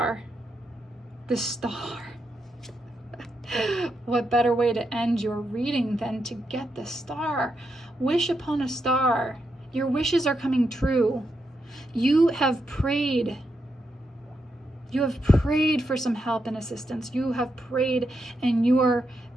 The star. What better way to end your reading than to get the star? Wish upon a star. Your wishes are coming true. You have prayed. You have prayed for some help and assistance. You have prayed, and you are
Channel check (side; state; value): both; normal; correlation 0.83